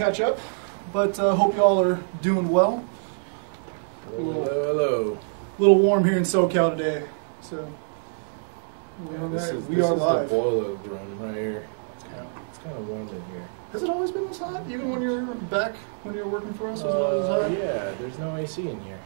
up, but hope you all are doing well. Hello. A little warm here in SoCal today, so This we are is live. the boiler room right here. It's kind of warm in here. Has it always been this hot? Even when you're back, when you were working for us, was it always this hot? Yeah, there's no AC in here.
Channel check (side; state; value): left; silent; 61 dB below the other